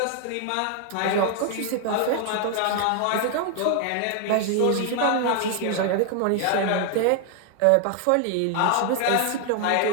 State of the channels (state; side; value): different; both; correlation 0.00